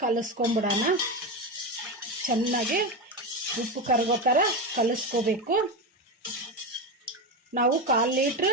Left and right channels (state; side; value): normal; both; correlation 0.16